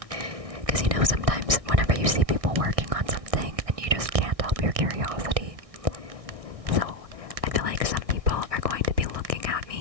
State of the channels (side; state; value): left; late; 1.6 ms